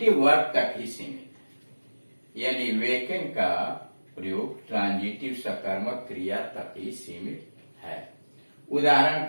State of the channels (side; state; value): both; inverted; correlation -1.00